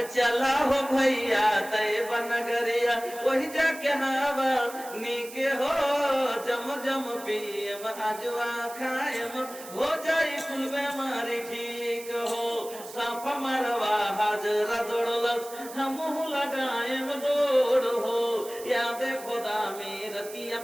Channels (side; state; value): right; noise; hiss, 15 dB below the sound